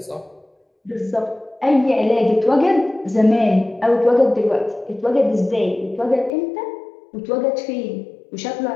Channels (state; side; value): drops out; right; at 6.3 s